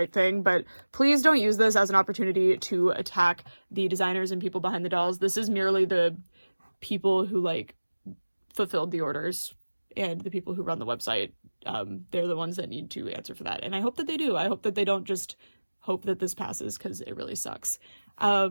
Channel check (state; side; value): inverted; both; correlation -1.00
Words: thing, but please don't use this as an opportunity to attack the designers and people behind the dolls. This is merely the people who, like, fulfilled the orders, and the people who run the website. They're the ones that need to answer for that, and I hope that they do. I hope that they don't just hope that this passes, because it really sucks.